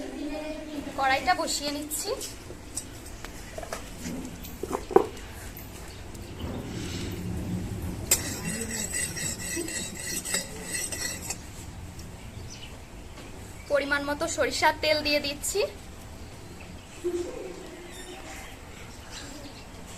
কড়াইটা বসিয়ে নিচ্ছি। পরিমাণ মতো সরিষার তেল দিয়ে দিচ্ছি।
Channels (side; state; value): both; identical; correlation 1.00